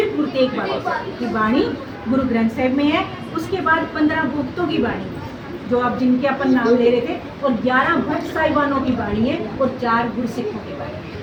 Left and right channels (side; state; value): both; identical; correlation 1.00